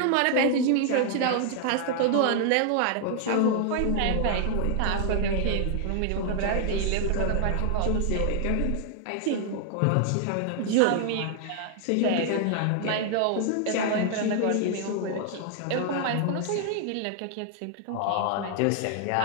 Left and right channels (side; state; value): both; different; correlation 0.00